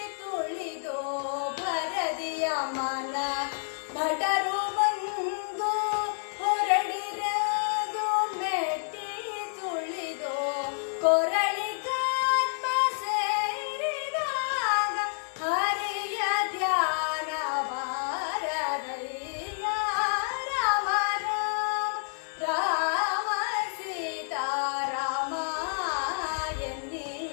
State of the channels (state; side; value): silent; right; digital silence